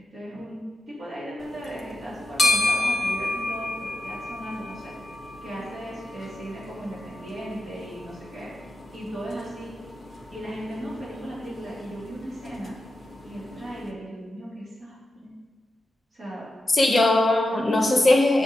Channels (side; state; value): both; normal; correlation 0.90